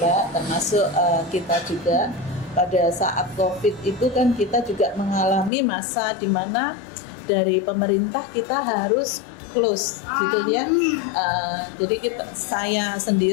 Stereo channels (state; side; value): drops out; right; at 5.5 s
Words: termasuk kita juga pada saat COVID itu kan kita juga mengalami masa di mana dari pemerintah kita harus close gitu ya. Jadi saya